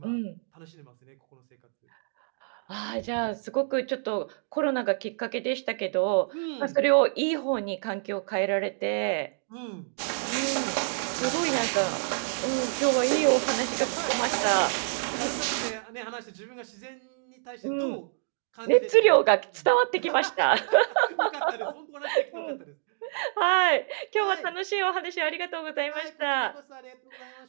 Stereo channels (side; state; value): left; silent; digital silence